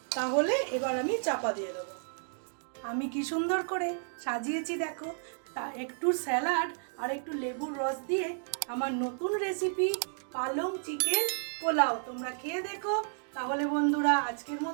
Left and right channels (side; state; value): left; silent; digital silence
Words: তাহলে এবার আমি চাপা দিয়ে দেবো। আমি কি সুন্দর করে সাজিয়েছি দেখো, তা একটু স্যালাড আর একটু লেবুর রস দিয়ে আমার নতুন রেসিপি পালং চিকেন পোলাও তোমরা খেয়ে দেখো। তাহলে বন্ধুরা আজকের